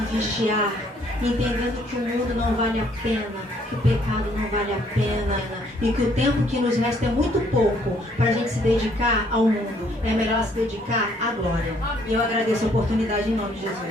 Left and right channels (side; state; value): both; normal; correlation 0.65